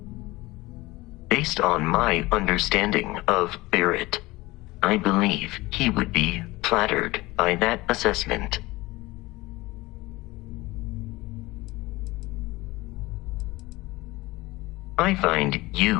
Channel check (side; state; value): right; quieter; 20.4 dB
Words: Based on my understanding of Barrett, I believe he would be flattered by that assessment. I find